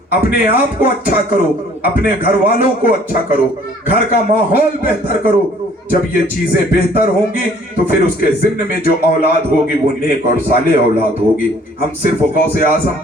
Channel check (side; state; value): both; normal; correlation 0.57